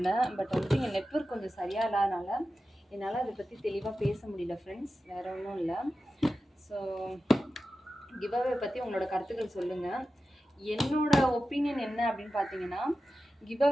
பட் வந்துட்டு என் நெட்வொர்க் கொஞ்சம் சரியாக இல்லாதனால என்னால் அதை பற்றி தெளிவாக பேச முடியல ஃப்ரெண்ட்ஸ். வேறு ஒன்றும் இல்லை. ஸோ கிவ்அவே பற்றி உங்களோட கருத்துக்கள் சொல்லுங்கள். என்னோட ஒப்பீனியன் என்ன அப்படின்னு பார்த்தீங்கன்னா,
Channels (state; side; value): normal; both; correlation 0.93